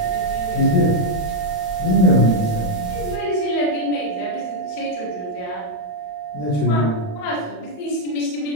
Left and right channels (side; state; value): right; late; 27 ms